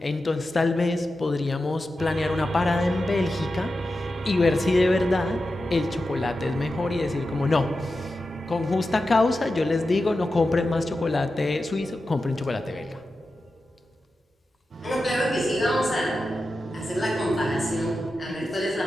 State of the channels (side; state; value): both; normal; correlation 0.91